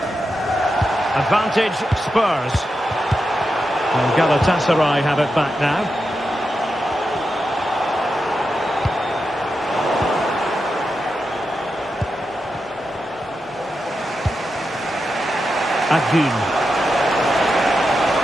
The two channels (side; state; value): both; normal; correlation 0.88